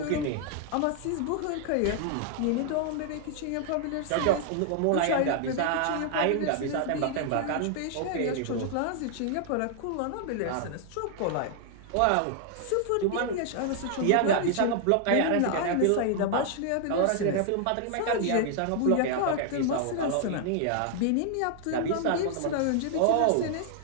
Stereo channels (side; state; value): both; different; correlation 0.00